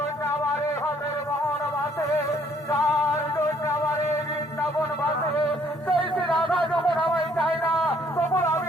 আমার এই হাতের মোহন বাসে, যার জন্য আমার এই বৃন্দাবন বাসে, সেই শ্রীরাধা যখন আমায় চাই না তখন আমি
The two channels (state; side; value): normal; both; correlation 0.64